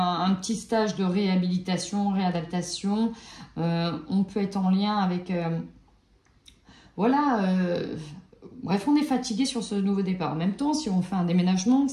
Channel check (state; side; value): identical; both; correlation 1.00